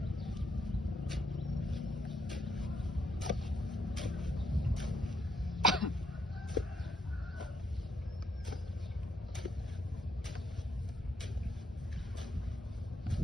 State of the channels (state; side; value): normal; both; correlation 0.76